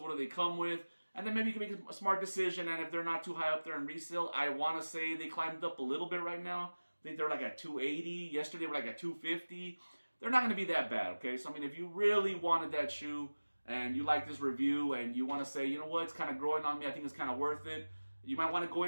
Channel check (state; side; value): inverted; both; correlation -1.00